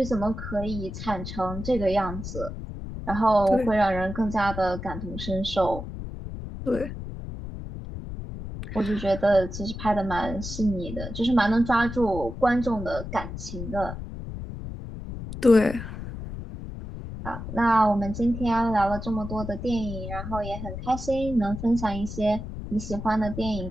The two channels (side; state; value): left; noise; rumble, 8 dB below the sound